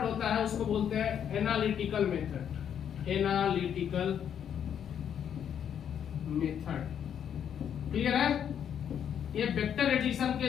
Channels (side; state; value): right; quieter; 8.8 dB